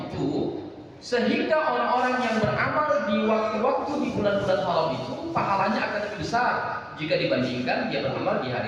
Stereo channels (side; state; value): both; identical; correlation 1.00